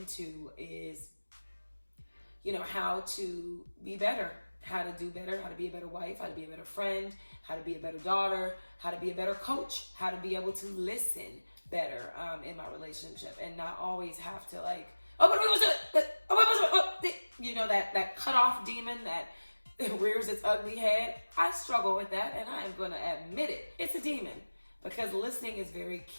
is, how to be better, how to do better, how to be a better wife, how to be a better friend, how to be a better daughter, how to be a better coach, how to be able to listen better in my relationship and not always have to that cutoff demon that rears its ugly head. I struggle with that, and I am going to admit it. It's a demon, because listening is very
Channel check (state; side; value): inverted; both; correlation -1.00